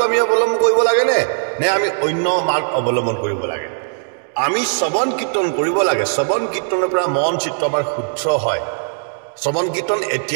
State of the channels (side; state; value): left; silent; 60 dB below the other